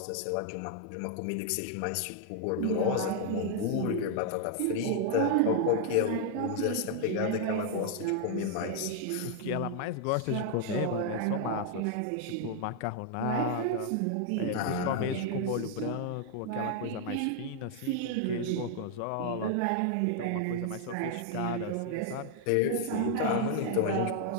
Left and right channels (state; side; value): different; both; correlation 0.00